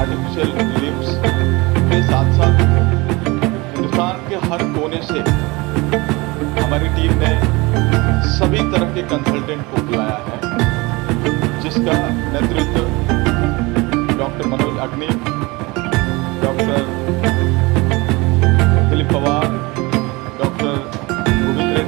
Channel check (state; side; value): quieter; left; 24.1 dB